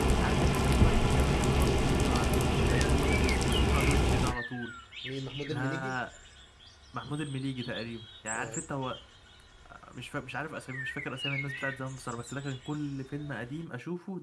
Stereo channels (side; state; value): both; identical; correlation 1.00